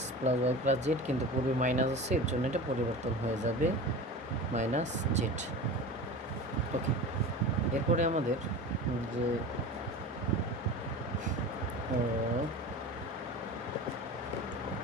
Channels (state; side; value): normal; both; correlation 0.33